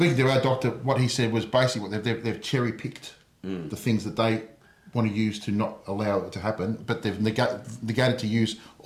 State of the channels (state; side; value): identical; both; correlation 1.00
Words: to our doctor, what he said was basically what they've cherry-picked the things that they want to use to not allow it to happen, but they've negated to use